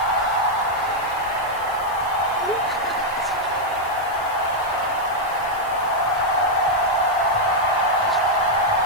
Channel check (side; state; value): left; noise; hiss, 21 dB below the sound